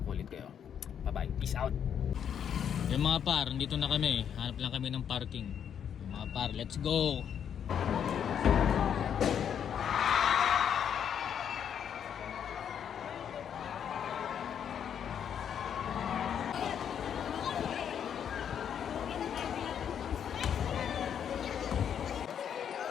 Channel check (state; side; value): quieter; right; 8.5 dB